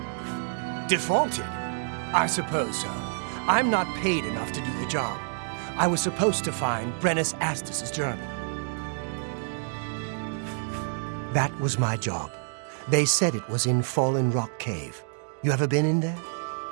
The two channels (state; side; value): silent; left; digital silence